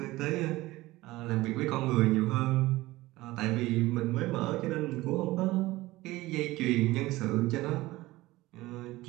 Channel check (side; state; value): left; quieter; 18.7 dB